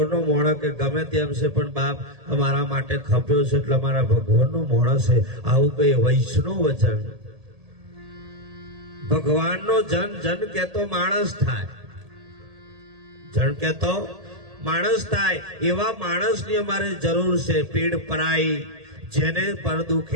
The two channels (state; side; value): late; left; 1.8 ms